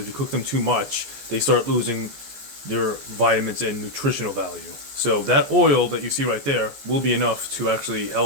you cook them too much, they start losing their vitamins and nutritional value. So that oil that you see right there will be enough to actually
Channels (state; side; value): late; left; 14 ms